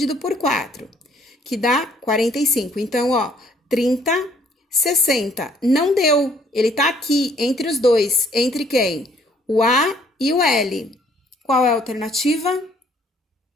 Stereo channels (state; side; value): normal; both; correlation 0.62